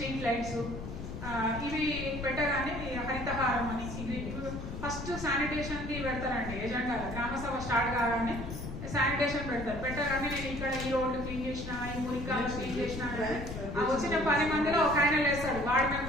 లైట్స్, ఇవి పెట్టగానే హరితహారం అని ఇది ఫస్ట్ శానిటేషన్ కి పెడతారండి ఎజెండా. గ్రామ సభ స్టార్ట్ కాగానే శానిటేషన్ పెట్టగానే నేను ఇక్కడ ఈ రోడ్డు క్లీన్ చేసిన, ఈ మురికాలు క్లీన్ చేసిన, వచ్చిన 10 మందిలో ఒక ఆయన లేస్తాడు, వార్డు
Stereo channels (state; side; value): noise; left; rumble, 8 dB below the sound